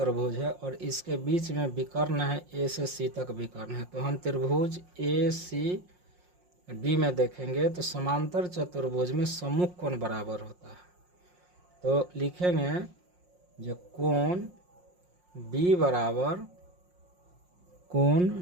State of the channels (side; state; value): left; late; 5.6 ms